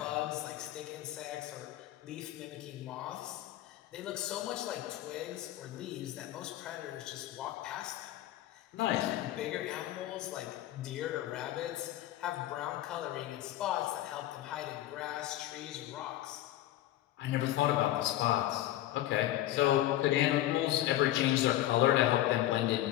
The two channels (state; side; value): quieter; right; 14.2 dB